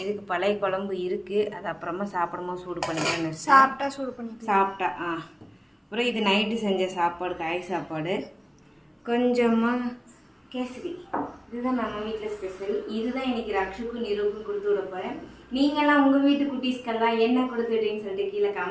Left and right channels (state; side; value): identical; both; correlation 1.00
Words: இதுக்கு பழைய குழம்பு இருக்குது, அது அப்புறமா சாப்பிடும்போது சூடு பண்ணிக்கிறேன்னு சாப்பிட்டா. அப்புறம் இது நைட்டு செஞ்ச சாப்பாடு, காய் சாப்பாடு, கொஞ்சமாக கேசரி. இதுதான் நம்ம வீட்டில் ஸ்பெஷல். இதுதான் இன்றைக்கி ரக்ஷுக்கும் நிருவுக்கும் கொடுத்து விட போகிறேன். நீங்களாம் உங்கள் வீட்டு குட்டீஸ்க்கெல்லாம் என்ன கொடுத்துட்டீங்கன்னு சொல்லிட்டு கீழே